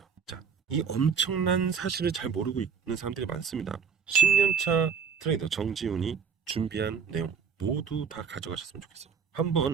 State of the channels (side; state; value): left; quieter; 6.4 dB